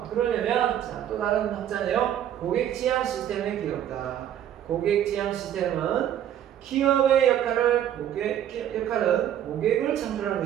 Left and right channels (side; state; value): left; quieter; 10.6 dB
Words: 그러려면 또 다른 학자네요. 고객 지향 시스템의 기업이다. 고객 지향 시스템은 기업의 역할은 고객을 창출하는